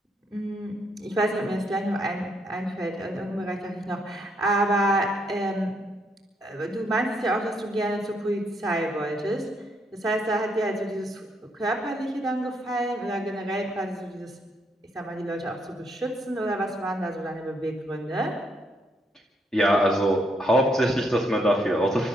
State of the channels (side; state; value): both; normal; correlation 0.74